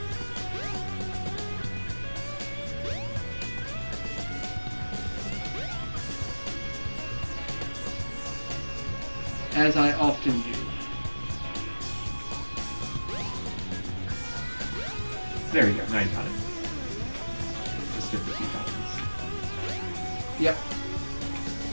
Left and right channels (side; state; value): both; inverted; correlation -1.00